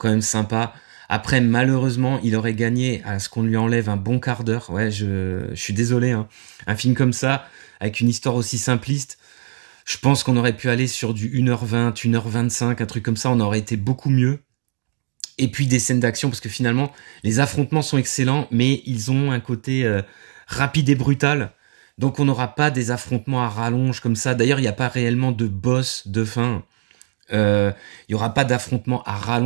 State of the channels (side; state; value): left; silent; digital silence